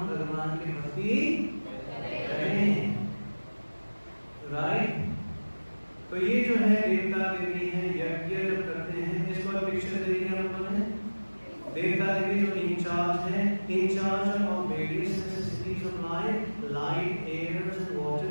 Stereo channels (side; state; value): both; inverted; correlation -1.00